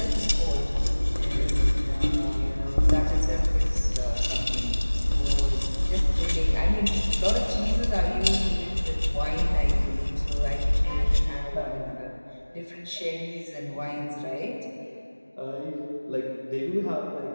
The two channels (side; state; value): both; inverted; correlation -1.00